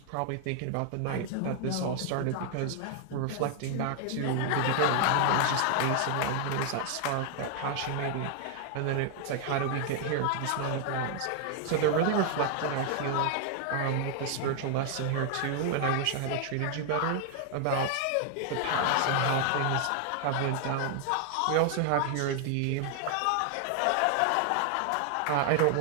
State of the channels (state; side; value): different; both; correlation 0.00